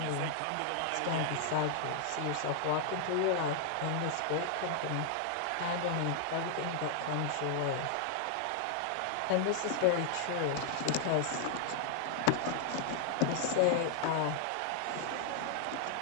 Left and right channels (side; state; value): both; different; correlation 0.00